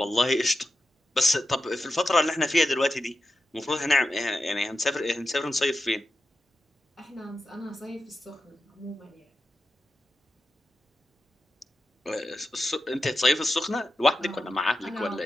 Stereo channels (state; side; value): normal; both; correlation 0.89